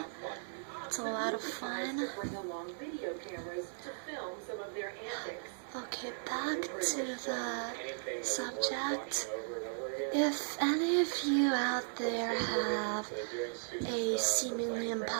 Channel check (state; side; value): silent; left; digital silence